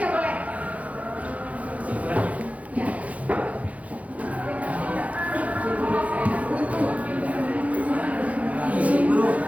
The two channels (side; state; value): left; late; 0.068 ms